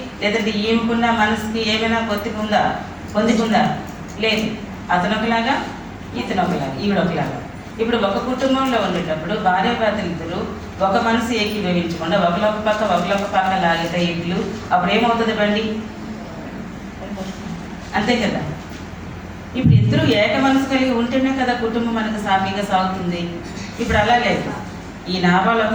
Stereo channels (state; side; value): identical; both; correlation 1.00